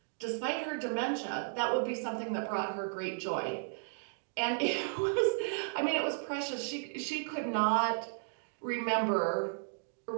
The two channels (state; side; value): silent; left; digital silence